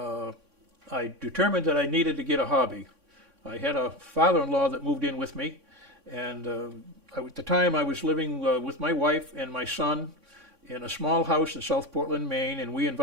determined that I needed to get a hobby. I had a father-in-law that moved in with me, and at the time I was living with my wife and my son in a small house in South Portland, Maine, and we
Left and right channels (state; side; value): late; left; 3.6 ms